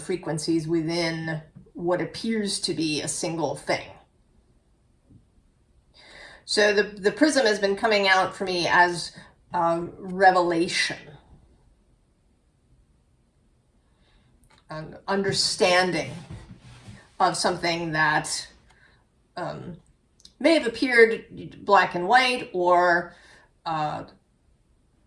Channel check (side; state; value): both; identical; correlation 1.00